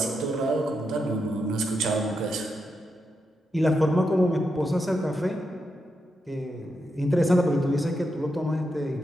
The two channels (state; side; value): normal; both; correlation 0.85